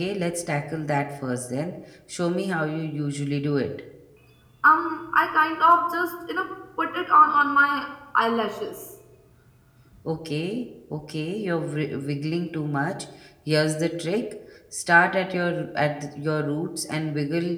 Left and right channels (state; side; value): identical; both; correlation 1.00